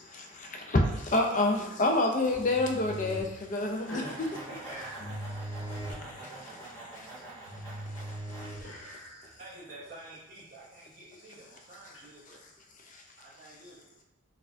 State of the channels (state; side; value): normal; both; correlation 0.22